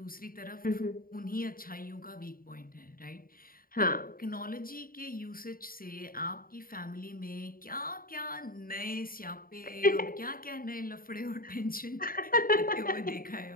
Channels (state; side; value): late; right; 0.42 ms